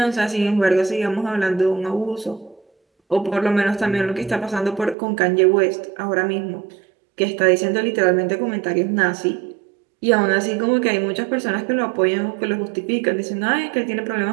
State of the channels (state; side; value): drops out; left; at 5.0 s